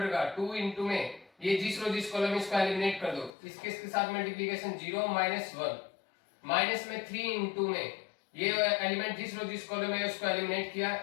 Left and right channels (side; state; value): right; drops out; at 3.3 s